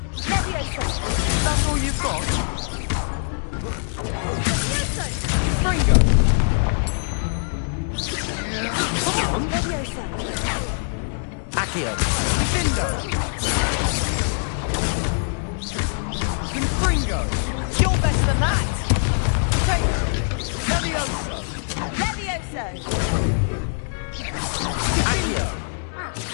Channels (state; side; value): silent; right; digital silence